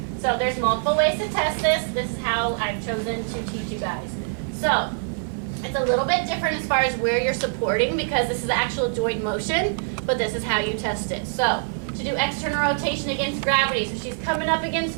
So there's multiple ways to test this. This is how I've chosen to teach you guys. So it's a little bit different as far as where you're supporting, because this is actual joint motion, but this is how you test it. So to do external rotation against gravity, so she's coming up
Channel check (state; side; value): silent; left; digital silence